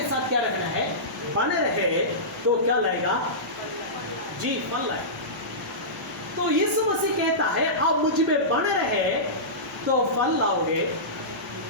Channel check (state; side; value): noise; left; hum, 27 dB below the sound